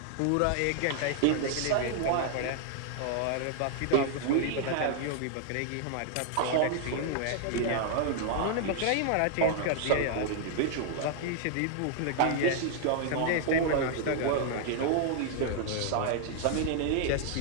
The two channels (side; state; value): both; different; correlation 0.00